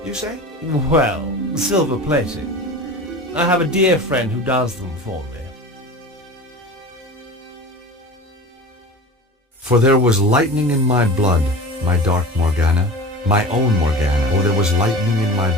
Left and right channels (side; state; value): both; normal; correlation 0.35